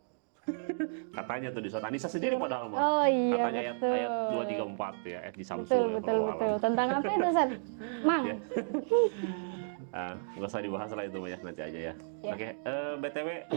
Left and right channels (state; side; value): silent; left; digital silence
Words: Katanya tuh di surat An-Nisa sendiri padahal mah. Oh iya, Katanya betul. ayat 234 ya, ayat di Samsu ya Betul, kalau alam. betul. Tentang apa itu, Ustaz? Mang. Ya. Nggak usah dibahas lah itu mah ya, nanti aja ya. Oke, BTW